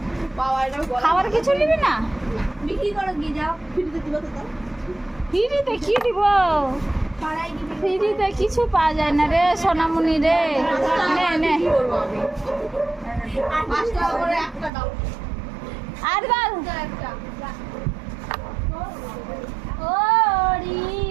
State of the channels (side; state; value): left; drops out; at 14.7 s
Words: পাওয়া এটা খাবার কিছু নিবি না? বিক্রি করো গিয়ে যাও, ফ্রিতে দিবা তো তাও। ফ্রিতে কি দিব? পাড়ায় গিয়ে ফ্রিতে কিছু পাওয়া যায় না রে সোনামণি রে। নে নে কি করব আমি? 5 টাকা করে একটা দাও। আর বল একটা